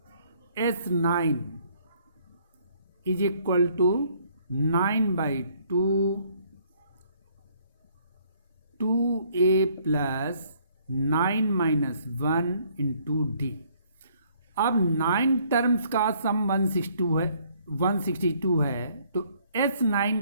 S9 is equal to 9/2 2a plus 9-1 into D. अब 9 टर्म्स का सम 162 है, तो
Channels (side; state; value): both; inverted; correlation -0.64